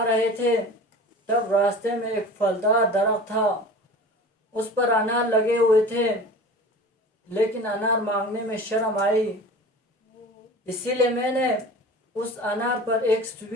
رہے تھے تب راستے میں ایک پھلدار درخت تھا، اس پر انار لگے ہوئے تھے، لیکن انار مانگنے میں شرم آئی، اسی لیے میں نے اس انار پر ایک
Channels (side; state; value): both; normal; correlation 0.38